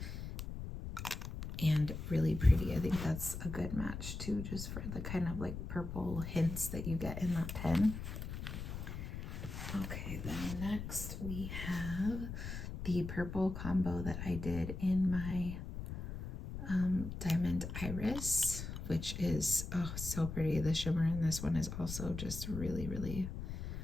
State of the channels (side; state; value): left; noise; rumble, 6 dB below the sound